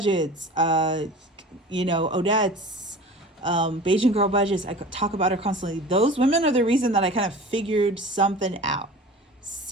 Odette's, Beijing Girl Budgets. I talk about her constantly. Those women are the reason that I kind of figured something out.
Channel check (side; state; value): both; normal; correlation 0.39